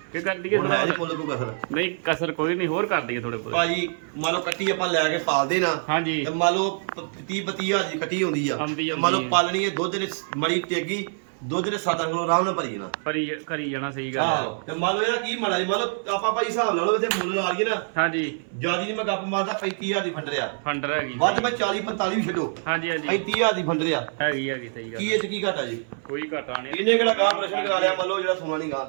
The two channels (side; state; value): left; silent; 62 dB below the other